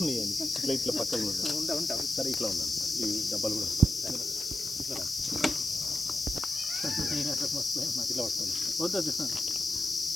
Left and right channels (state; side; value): noise; left; hiss, 11 dB below the sound